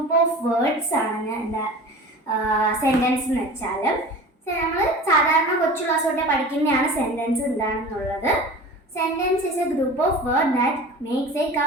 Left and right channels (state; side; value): normal; both; correlation 0.38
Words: of words ആണ് എന്താ സെൻറ്റൻസ് എന്ന് വെച്ചാൽ. നമ്മൾ സാധാരണ കൊച്ചു ക്ലാസ് തൊട്ടേ പഠിക്കുന്നതാണ് സെൻറ്റൻസ് എന്താണെന്നുള്ളത്. Sentence is A group of word that makes A